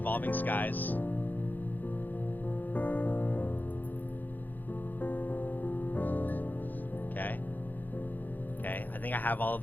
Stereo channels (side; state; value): right; late; 0.085 ms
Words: Skies. Okay. Okay, I think I have all of